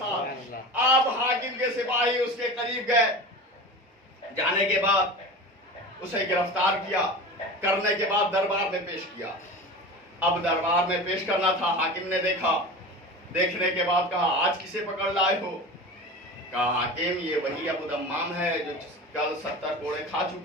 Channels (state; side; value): normal; both; correlation 0.32